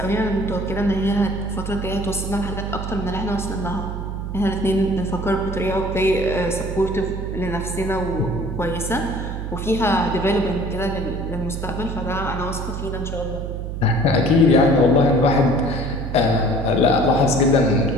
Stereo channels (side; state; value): right; noise; hum, 5 dB below the sound